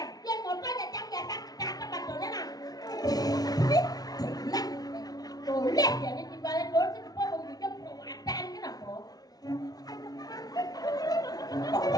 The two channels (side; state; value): right; late; 0.19 ms